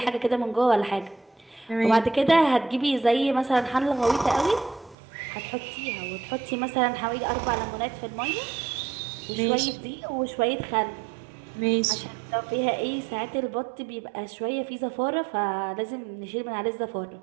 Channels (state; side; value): drops out; left; at 5.0 s